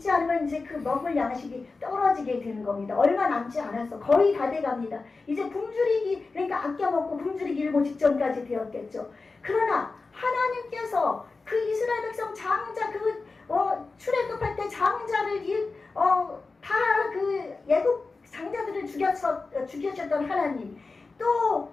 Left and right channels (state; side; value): quieter; right; 3.9 dB